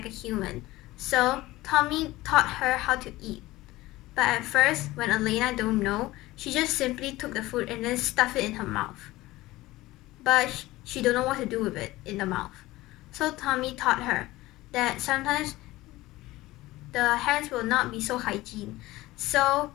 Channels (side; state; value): right; quieter; 18.3 dB